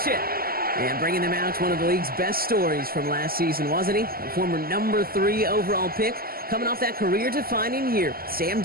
And bringing them out, one of the league's best stories from last season, wasn't he? A former number 3 overall pick, coming off that career-defining year, Sam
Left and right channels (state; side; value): late; left; 0.43 ms